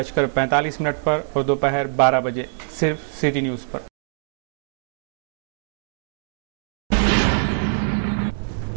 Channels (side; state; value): left; silent; digital silence